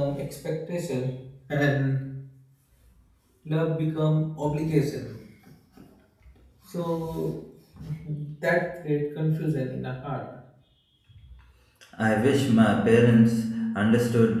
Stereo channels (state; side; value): identical; both; correlation 1.00